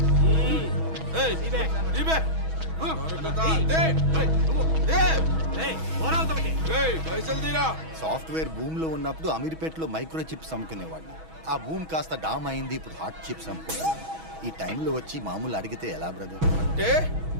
సాఫ్ట్వేర్ భూమ్ లో ఉన్నప్పుడు అమీర్పేటలో మైక్రో చిప్స్ అమ్ముకునేవాడిని. ఆ భూమ్ కాస్త డామ్ అయింది, ఇప్పుడు హాట్ చిప్స్ అమ్ముకుంటున్నాను. ఈ టైంలో వచ్చి మామూలు అడిగితే ఎలా బ్రదర్? అంటే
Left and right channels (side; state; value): left; late; 6.2 ms